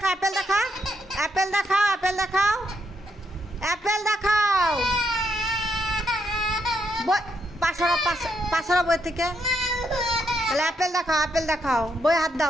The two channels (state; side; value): normal; both; correlation 0.78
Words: অ্যাপেল দেখা, অ্যাপেল দেখাও, অ্যাপেল দেখাও, অ্যাপেল দেখাও। পাশারা বই থেকে তাহলে অ্যাপেল দেখাও, অ্যাপেল দেখাও। বই হাত